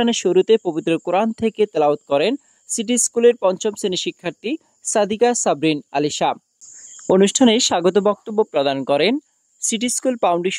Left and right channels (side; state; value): both; identical; correlation 1.00